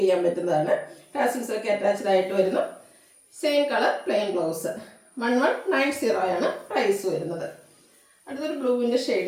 ചെയ്യാൻ പറ്റുന്നതാണ്. ടാസിൽസ് ഒക്കെ അറ്റാച്ച്ഡ് ആയിട്ട് വരുന്നു. Same colour plain blouse. 1190 ആണ് പ്രൈസ് വരുന്നത്. അടുത്തൊരു ബ്ലൂവിൻ്റെ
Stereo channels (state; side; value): identical; both; correlation 1.00